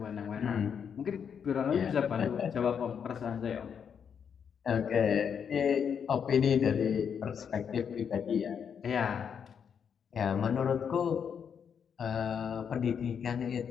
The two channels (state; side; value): quieter; right; 7.3 dB